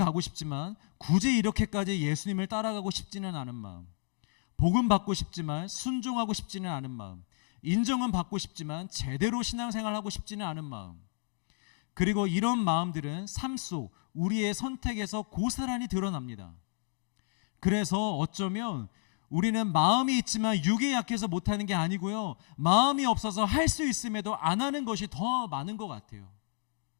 싶지만 굳이 이렇게까지 예수님을 따라가고 싶지는 않은 마음, 복음 받고 싶지만 순종하고 싶지는 않은 마음, 인정은 받고 싶지만 제대로 신앙생활하고 싶지는 않은 마음, 그리고 이런 마음들은 삶 속 우리의 선택에서 고스란히 드러납니다. 그래서 어쩌면 우리는 마음이 있지만 육이 약해서 못하는 게 아니고요, 마음이 없어서 할 수 있음에도 안 하는 것이 더 많은 것 같아요.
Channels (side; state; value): right; silent; 57 dB below the other